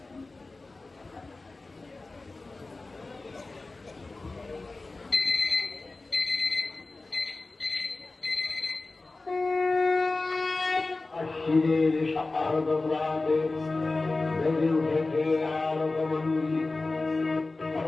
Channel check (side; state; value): right; quieter; 3.4 dB